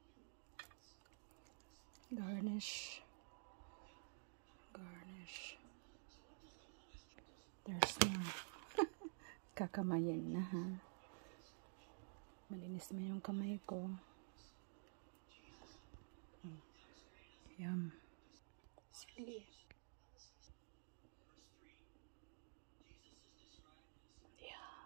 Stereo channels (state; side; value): silent; left; digital silence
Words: Garnish. Garnish. There's more. kakamayin na ha. Malinis na yung kamay ko. Yum. Silly.